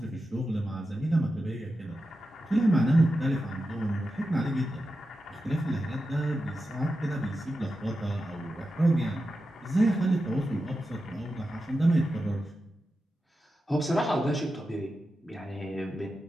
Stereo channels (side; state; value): both; normal; correlation 0.90